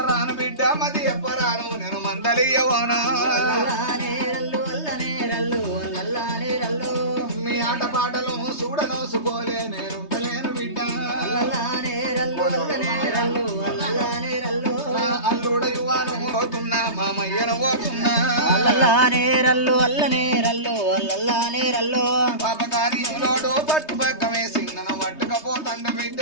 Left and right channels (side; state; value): right; late; 3.2 ms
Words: రాను బిడ్డ మది ఎప్పరాను నేను మందలియవనా మీ ఆట పాటలు చూడనోసుకోలే నేను ఉంటలేను బిడ్డ అల్లుడ యువాను పోతున్నా మామయ్యను పోతున్నా పాపకార్యంలోడు పట్టు పక్క వేసి నన్ను పట్టుకపోతండ బిడ్డ